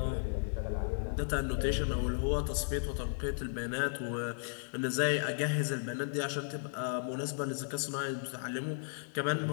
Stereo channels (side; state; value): right; silent; digital silence